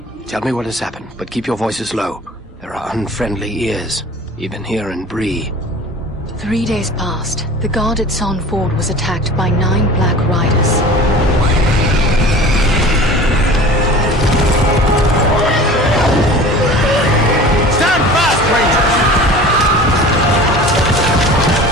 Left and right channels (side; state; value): both; normal; correlation 0.41